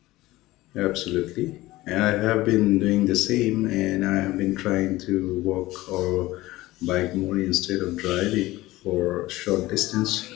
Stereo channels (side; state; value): right; quieter; 18.1 dB